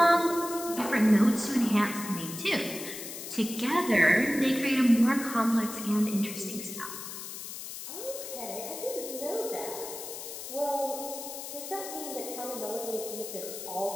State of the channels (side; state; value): left; noise; hiss, 9 dB below the sound